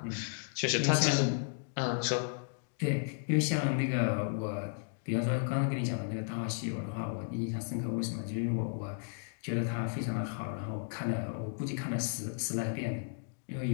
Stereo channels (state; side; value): silent; right; digital silence